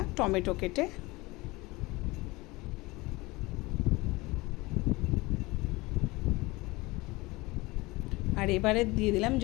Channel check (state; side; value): quieter; right; 22.3 dB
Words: টমেটো কেটে। আর এবারে দিয়ে দিলাম